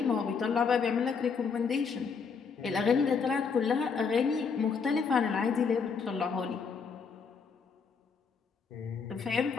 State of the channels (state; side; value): quieter; right; 5.7 dB